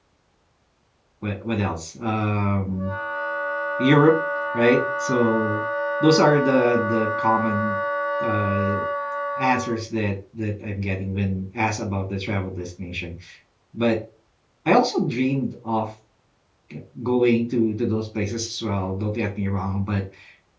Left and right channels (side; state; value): both; identical; correlation 1.00